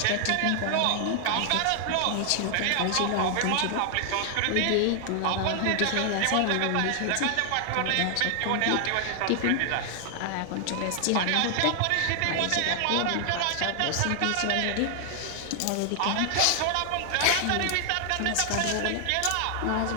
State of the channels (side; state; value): both; different; correlation 0.00